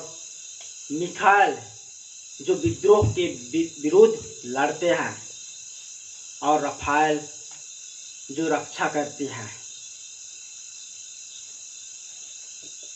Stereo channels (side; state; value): both; identical; correlation 1.00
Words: मिखाएल जो विद्रोह के विरुद्ध लड़ते हैं, और रफाएल जो रक्षा करती है।